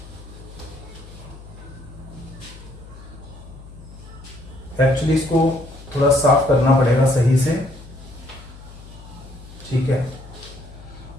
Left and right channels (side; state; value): left; noise; hum, 17 dB below the sound